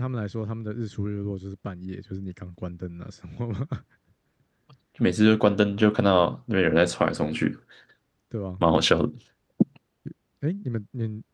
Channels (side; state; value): both; identical; correlation 1.00